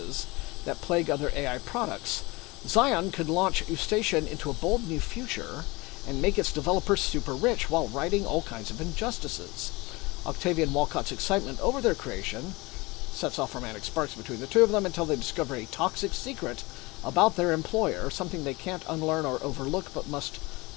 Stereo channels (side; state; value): right; quieter; 23.6 dB